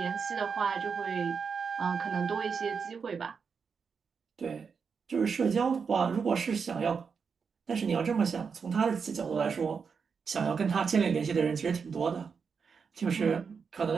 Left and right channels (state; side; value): quieter; left; 5.9 dB